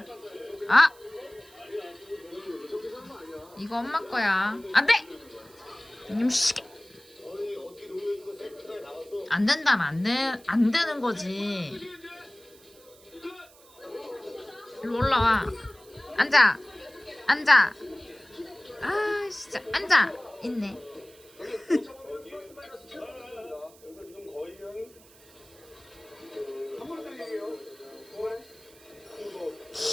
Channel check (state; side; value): noise; right; hiss, 25 dB below the sound